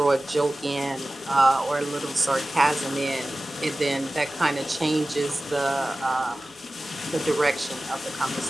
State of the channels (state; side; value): normal; both; correlation 0.97